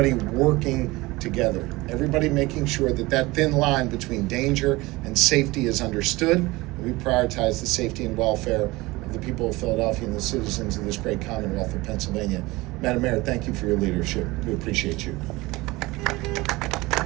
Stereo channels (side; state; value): left; quieter; 21.3 dB